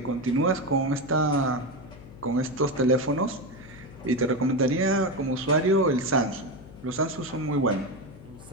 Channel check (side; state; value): left; noise; hum, 18 dB below the sound